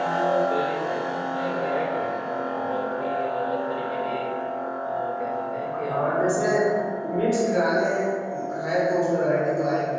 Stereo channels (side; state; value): both; identical; correlation 1.00